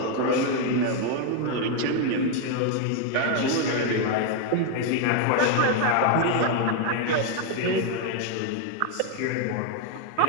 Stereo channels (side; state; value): both; different; correlation 0.01